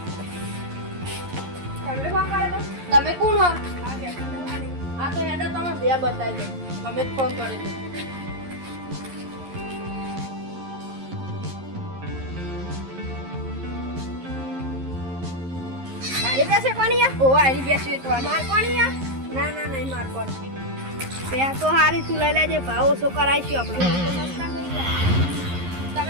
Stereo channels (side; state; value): left; late; 11 ms